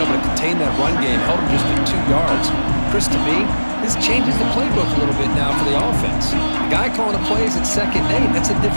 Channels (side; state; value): both; inverted; correlation -1.00